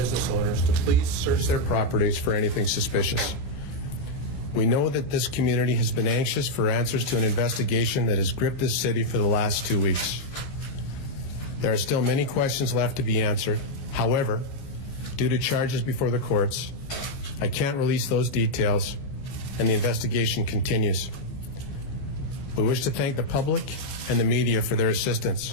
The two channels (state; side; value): late; right; 15 ms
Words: owners to please search their properties for anything suspicious. We know that this community has been anxious for answers to an investigation that has gripped this city for the last 2 weeks. There are still many questions left to be answered. However, due to charges before the courts, I can't release those details, and the investigation continues. We wish to thank the public and the media for their assistance.